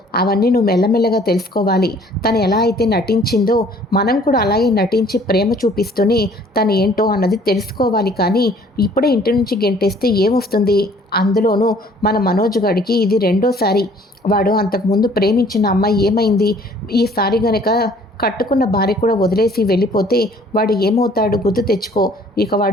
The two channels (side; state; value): both; normal; correlation 0.56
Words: అవన్నీ నువ్వు మెల్లమెల్లగా తెలుసుకోవాలి. తను ఎలా అయితే నటించిందో మనం కూడా అలాగే నటించి ప్రేమ చూపిస్తూనే తను ఏంటో అన్నది తెలుసుకోవాలి. కానీ ఇప్పుడే ఇంటి నుంచి గెంటేస్తే ఏమొస్తుంది? అందులోనూ మన మనోజ్ గడికి ఇది రెండోసారి. వాడు అంతకుముందు ప్రేమించిన అమ్మాయి ఏమైంది? ఈసారి గనక కట్టుకున్న భార్య కూడా వదిలేసి వెళ్ళిపోతే వాడు ఏమవుతాడు గుర్తు తెచ్చుకో. ఇక